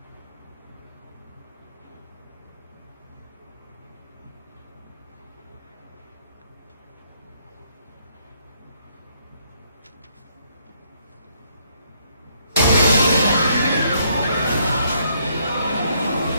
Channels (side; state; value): both; inverted; correlation -0.70